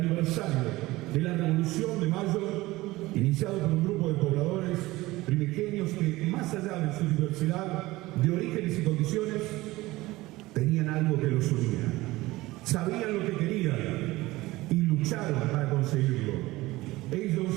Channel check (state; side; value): quieter; left; 19.1 dB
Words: de la Revolución de Mayo, iniciado por un grupo de pobladores primigenios que, más allá de su diversidad de orígenes y condiciones, tenían algo que los unía. Sabían lo que querían y lucharon para conseguirlo. Ellos